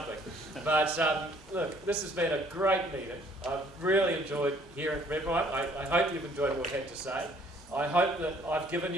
But look, this has been a great meeting. I've really enjoyed hearing from everyone. I hope you've enjoyed what we had to say. I hope that I've given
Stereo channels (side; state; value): both; normal; correlation 0.60